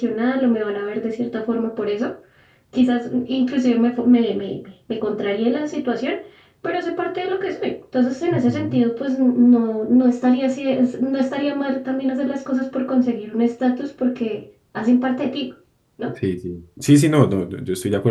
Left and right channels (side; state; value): both; identical; correlation 1.00